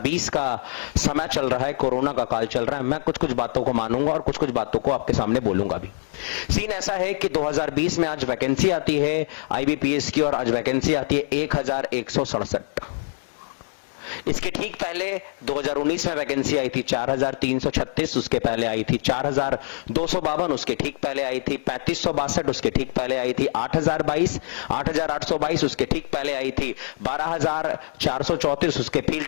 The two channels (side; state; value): right; silent; digital silence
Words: का समय चल रहा है, कोरोना का काल चल रहा है। मैं कुछ बातों को मानूंगा और कुछ बातों को आपके सामने बोलूंगा भी। सीन ऐसा है कि 2020 में आज वैकेंसी आती है आईबीपीएस की, और आज वैकेंसी आती है 1167। इसके ठीक पहले 2019 में वैकेंसी आई थी 4336, उसके पहले आई थी 4252, उसके ठीक पहले आई थी 3562, उसके ठीक पहले आई थी 8022, 8822, उसके ठीक पहले आई थी 12434, उसके